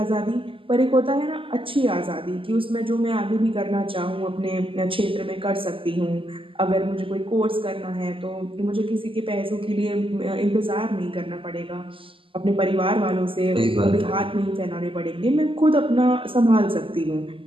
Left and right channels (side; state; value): left; late; 0.25 ms